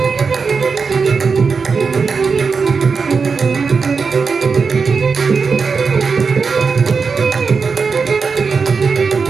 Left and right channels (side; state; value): left; quieter; 5.1 dB